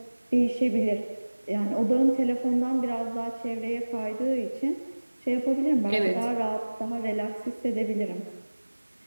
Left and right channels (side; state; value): both; inverted; correlation -1.00